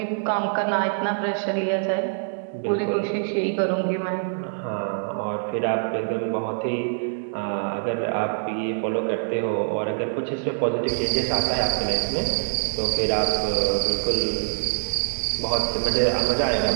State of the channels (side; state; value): left; silent; digital silence